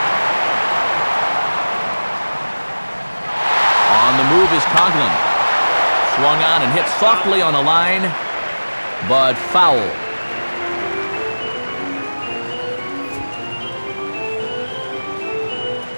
On the move is Coughlin. Swung on and hit softly on a line, but foul.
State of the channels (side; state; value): both; inverted; correlation -1.00